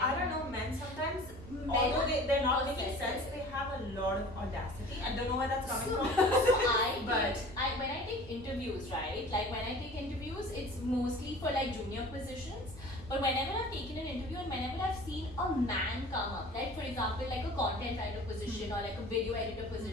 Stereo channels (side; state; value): right; noise; rumble, 16 dB below the sound